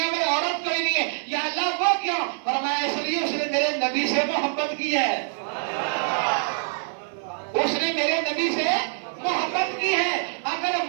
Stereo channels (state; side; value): silent; left; 56 dB below the other